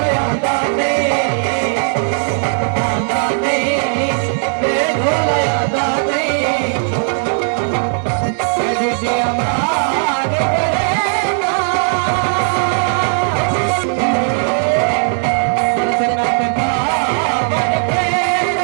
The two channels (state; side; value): silent; left; digital silence